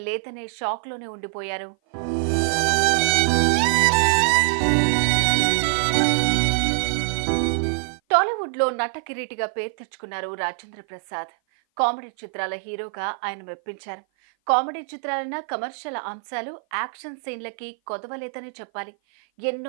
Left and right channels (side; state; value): left; silent; 57 dB below the other